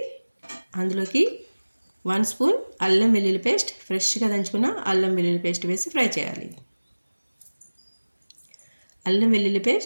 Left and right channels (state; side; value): inverted; both; correlation -1.00